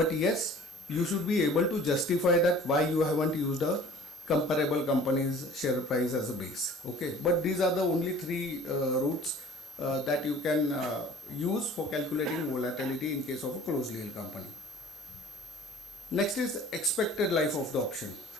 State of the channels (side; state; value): both; normal; correlation 0.47